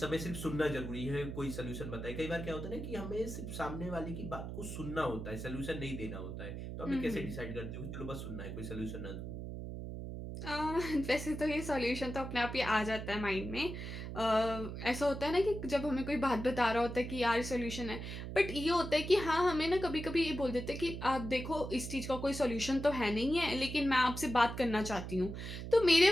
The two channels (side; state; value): right; noise; hum, 7 dB below the sound